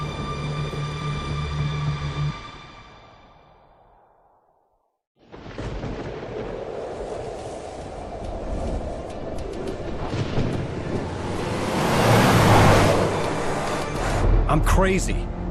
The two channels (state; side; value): identical; both; correlation 1.00